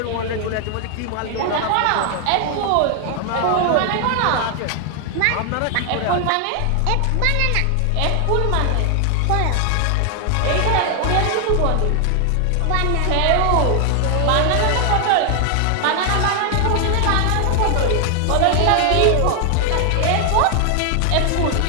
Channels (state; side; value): different; both; correlation 0.00